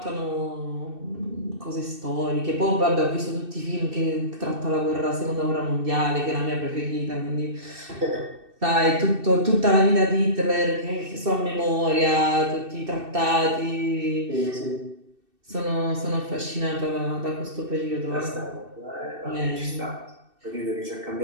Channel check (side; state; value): left; late; 2.6 ms